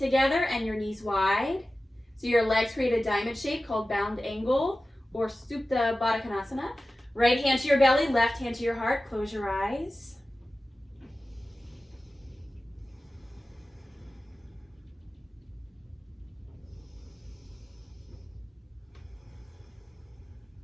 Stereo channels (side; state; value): both; normal; correlation 0.95